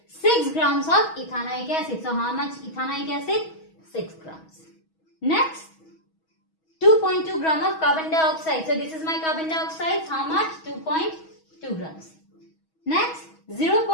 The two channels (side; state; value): right; late; 6.2 ms